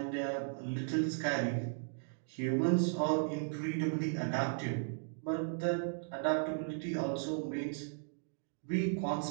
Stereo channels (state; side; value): silent; left; digital silence